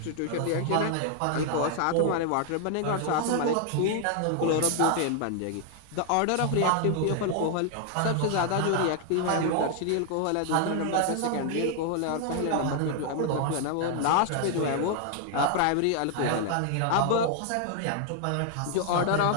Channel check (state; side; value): different; both; correlation 0.00